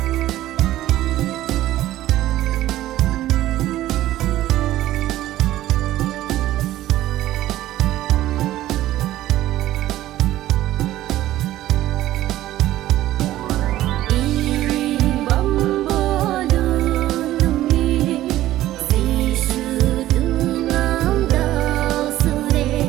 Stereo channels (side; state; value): left; quieter; 14.6 dB